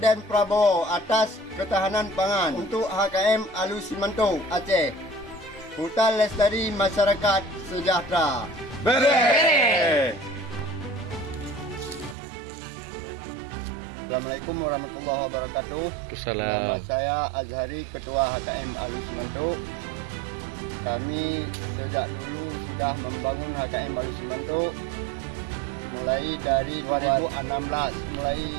Prabowo atas ketahanan pangan untuk HKM Alus Simanto Aceh. Hutan lestari masyarakat sejahtera. Bere. Assalamualaikum warahmatullahi wabarakatuh. Nama saya Azhari, Ketua HKM Alus Simanto. Kami sejak dulu sudah membangun HKM Alus Simanto mulai dari 2016, mulai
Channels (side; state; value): left; drops out; at 12.2 s